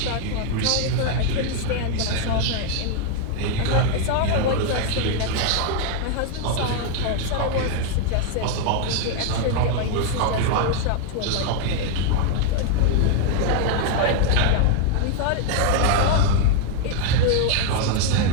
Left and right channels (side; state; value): both; different; correlation 0.00